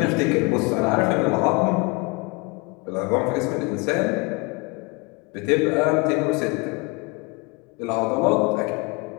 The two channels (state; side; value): quieter; right; 28.1 dB